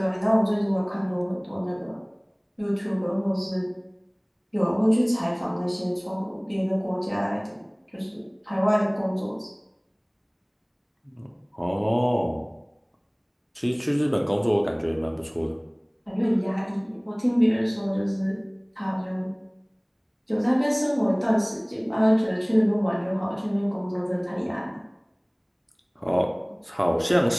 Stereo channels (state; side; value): identical; both; correlation 1.00